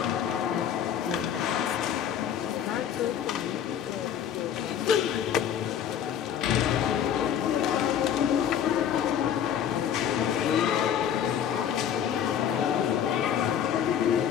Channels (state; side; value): quieter; right; 9.1 dB